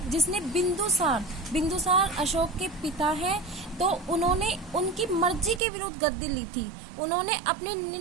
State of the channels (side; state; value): left; drops out; at 5.6 s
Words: जिसने बिंदुसार अशोक के पिता है। तो उन्होंने उनकी मर्जी के विरुद्ध गद्दी ली थी। उन्होंने अपने